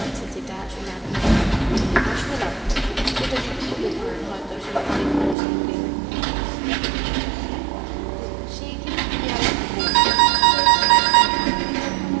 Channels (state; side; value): drops out; left; at 5.4 s